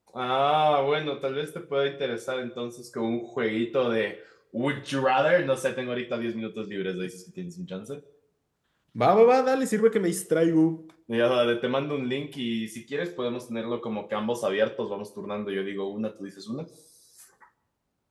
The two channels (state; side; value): identical; both; correlation 1.00